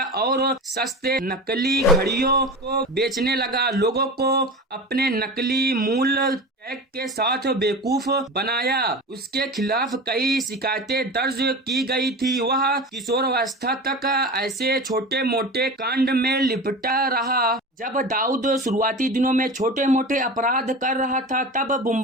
और सस्ते नकली घड़ियों को बेचने लगा। लोगों को अपने नकली मूल्य टैग के साथ बेवकूफ बनाया। उसके खिलाफ कई शिकायतें दर्ज की गई थी। वह किशोरावस्था तक ऐसे छोटे मोटे कांड में लिपटा रहा। जब दाऊद शुरुआती दिनों में छोटे मोटे अपराध कर रहा था तब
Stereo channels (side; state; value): both; normal; correlation 0.31